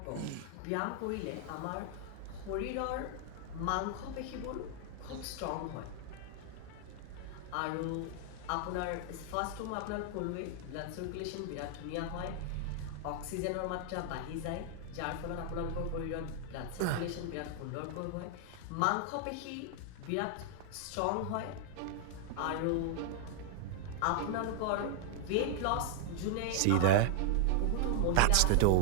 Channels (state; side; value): different; both; correlation 0.00